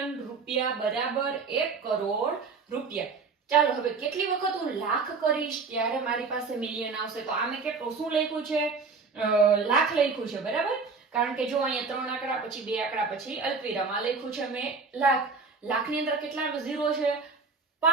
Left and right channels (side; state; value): left; quieter; 4.6 dB